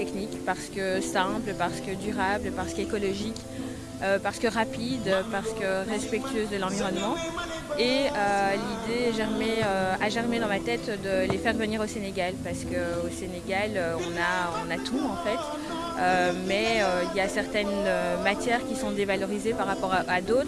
parce que simple, parce que durable, parce qu'écologique, parce que rapide, parce que respectueuse de l'environnement. Et l'idée a germé dans ma tête de les faire venir au Sénégal parce qu'au Sénégal, on a tout en fait. Mais il y a certaines matières qui sont dévalorisées par rapport à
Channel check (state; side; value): identical; both; correlation 1.00